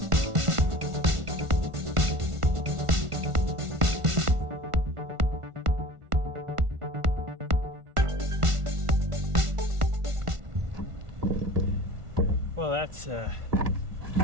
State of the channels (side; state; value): left; late; 1.5 ms